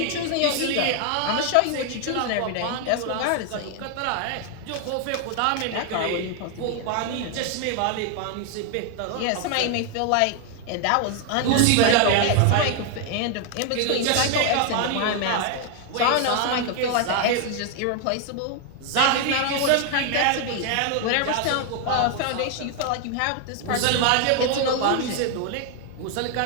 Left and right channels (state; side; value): different; both; correlation 0.00